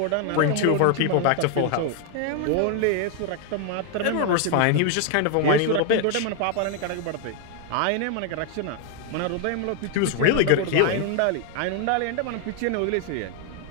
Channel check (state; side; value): different; both; correlation 0.00